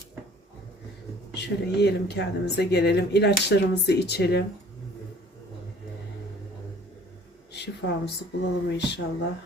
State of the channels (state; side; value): normal; both; correlation 0.52